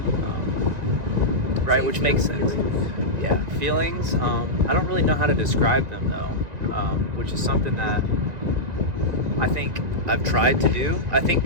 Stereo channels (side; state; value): left; late; 1.9 ms